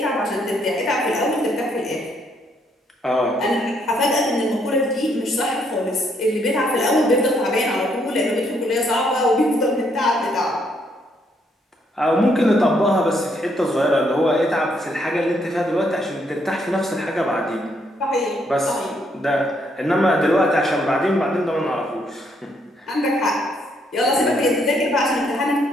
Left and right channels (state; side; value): normal; both; correlation 0.72